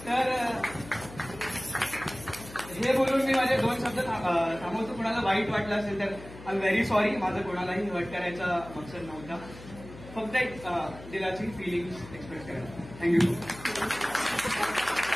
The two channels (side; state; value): left; noise; hum, 16 dB below the sound